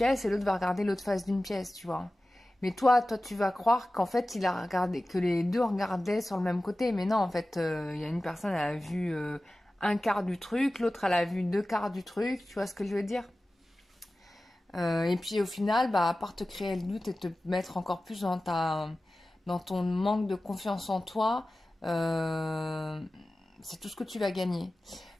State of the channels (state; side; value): normal; both; correlation 0.96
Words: et l'autre va regarder l'autre face d'une pièce, tu vois. Mais toi, tu vas croire qu'en fait, il a regardé, que les deux regardaient sur le même côté. Mais non, en fait, il y a une personne, elle a vu un quart du truc, l'autre, elle a vu deux quarts du truc. Tu vois ce que je veux dire? Et puis au final, bah, à part te créer le doute et te mettre encore plus dans ton manque de confiance en toi, c'est tout ce que tu vas gagner.